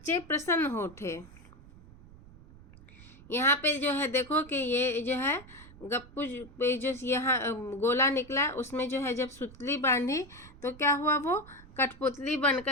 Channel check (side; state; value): right; noise; rumble, 20 dB below the sound